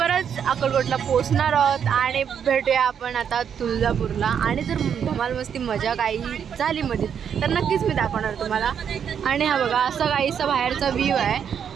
अक्कलकोटला पोचणार आहोत आणि भेटूया आपण आता तुळजापूरला। आणि जर धमाल मस्ती मजा काही झाली मध्ये तर नक्कीच मी दाखवणार तुम्हाला। आणि हा बघा असा काहीसा बाहेरचा व्ह्यू आहे,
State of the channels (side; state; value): left; quieter; 7.9 dB